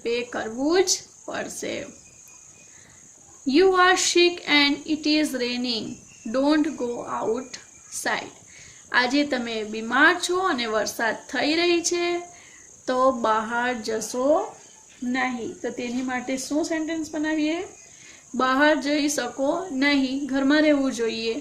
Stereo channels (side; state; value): both; identical; correlation 1.00